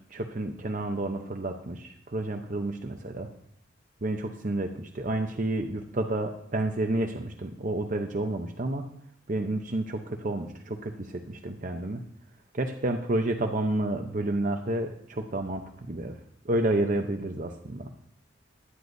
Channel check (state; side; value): normal; both; correlation 0.58